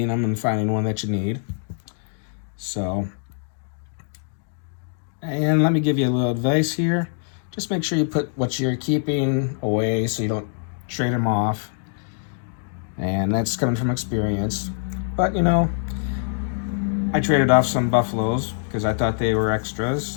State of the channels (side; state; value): right; silent; digital silence